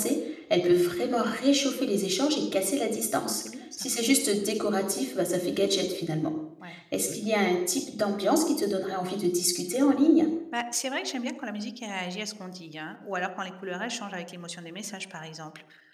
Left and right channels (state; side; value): identical; both; correlation 1.00